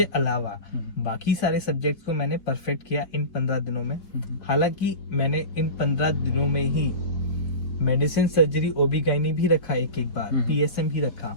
अलावा बाकी सारे सब्जेक्ट्स को मैंने परफेक्ट किया इन 15 दिनों में। हालांकि मैंने इन 15 दिनों में ही मेडिसिन, सर्जरी, OB-GYN भी रखा एक बार, PSM भी रखा,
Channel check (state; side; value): late; right; 4.5 ms